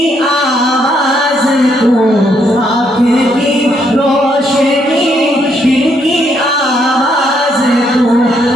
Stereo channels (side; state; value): both; normal; correlation 0.73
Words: आवाज़ तू, आँख की रोशनी दिल की आवाज़ तू।